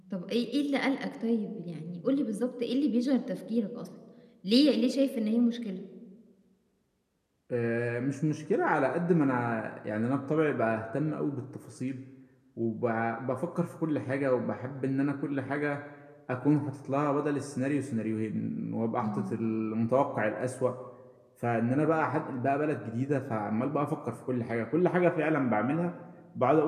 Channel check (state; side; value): identical; both; correlation 1.00